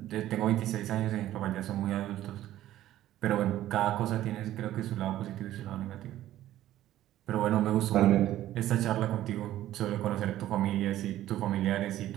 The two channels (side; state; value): left; quieter; 13.6 dB